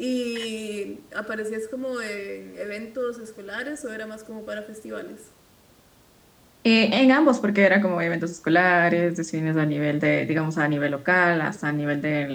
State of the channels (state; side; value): identical; both; correlation 1.00